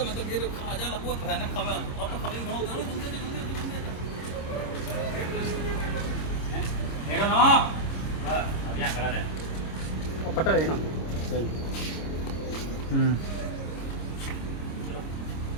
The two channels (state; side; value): late; right; 26 ms